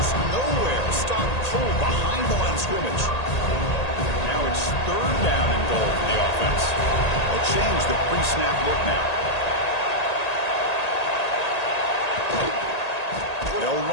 nowhere. Stopped cold behind the line of scrimmage. Now it's third down and goal for the offense. They'll change the pre-snap look now. They'll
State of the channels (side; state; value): right; late; 1.8 ms